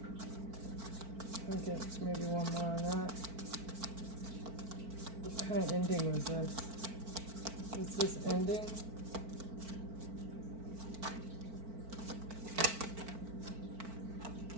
I'll get maybe one more on that. What kind of ending was this? Is this ending?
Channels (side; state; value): left; late; 4.5 ms